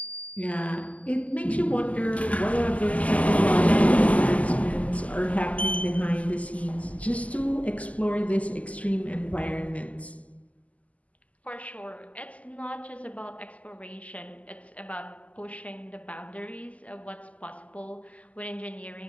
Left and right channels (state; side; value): late; right; 0.071 ms